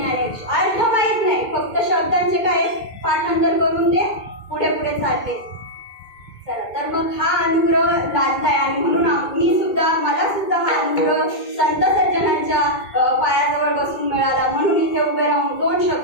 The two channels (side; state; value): right; late; 2.2 ms